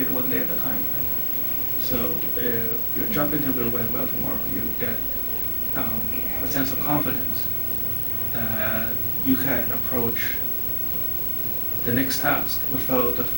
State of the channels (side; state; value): both; normal; correlation 0.88